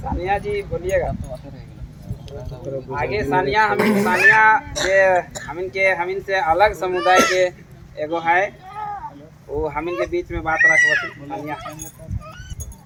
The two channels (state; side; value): identical; both; correlation 1.00